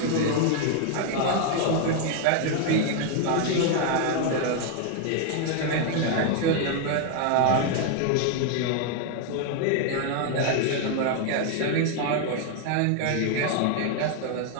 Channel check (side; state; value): both; different; correlation 0.00